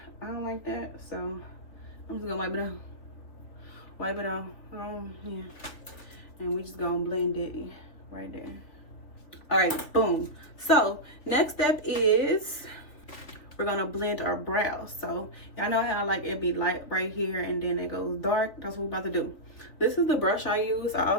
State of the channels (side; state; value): right; late; 3.4 ms